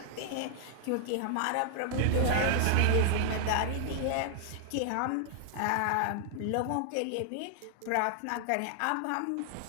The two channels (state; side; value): different; both; correlation 0.00